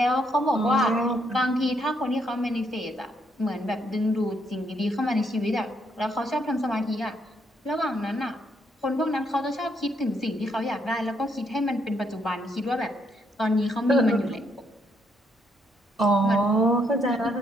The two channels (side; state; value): both; normal; correlation 0.74